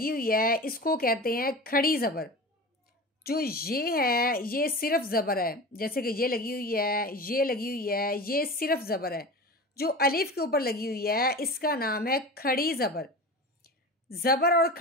हुई है इसको कहते हैं खड़ी ज़बर। जो ये है ये सिर्फ ज़बर है, जैसे कि ये लगी हुई है, ये लगी हुई है, ये सिर्फ ज़बर है। जो अलिफ के ऊपर लगी हुई है इसका नाम है खड़ी ज़बर। ज़बर और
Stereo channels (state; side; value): normal; both; correlation 0.31